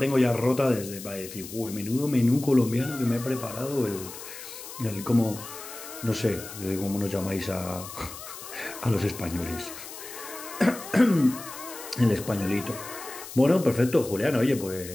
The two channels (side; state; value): left; noise; hiss, 12 dB below the sound